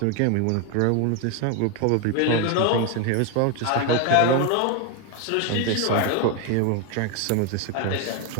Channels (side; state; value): both; different; correlation 0.01